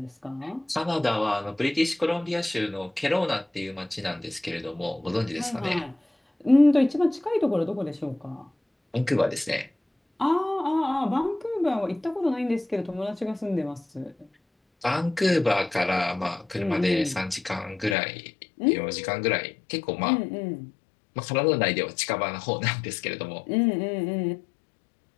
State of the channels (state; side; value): drops out; right; at 17.9 s